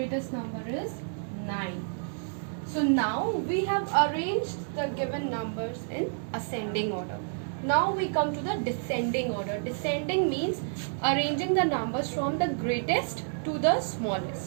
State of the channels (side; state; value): left; silent; digital silence